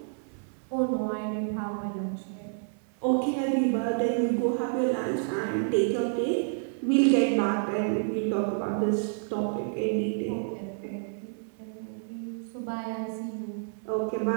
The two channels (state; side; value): silent; left; digital silence